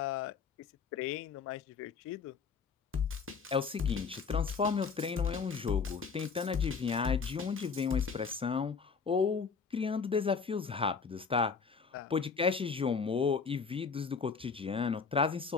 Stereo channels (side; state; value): right; quieter; 5.5 dB